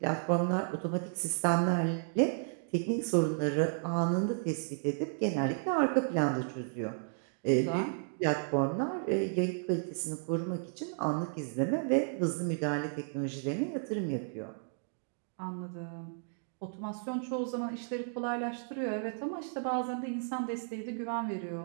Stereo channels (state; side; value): silent; left; digital silence